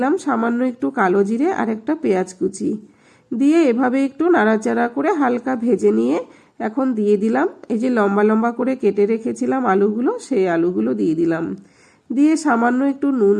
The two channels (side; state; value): both; identical; correlation 1.00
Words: সামান্য একটু কালো জিরে আর একটা পেঁয়াজ কুচি দিয়ে এভাবে একটু নাড়াচাড়া করে হালকা ভেজে নিয়ে এখন দিয়ে দিলাম এই যে লম্বা লম্বা করে কেটে রেখেছিলাম আলুগুলো, সেই আলুগুলো দিয়ে দিলাম। দিয়ে সামান্য একটু নুন